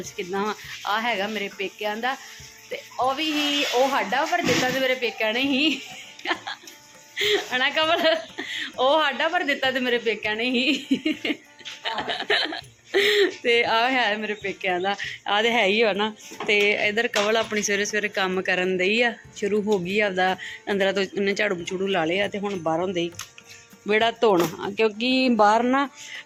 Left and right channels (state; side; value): identical; both; correlation 1.00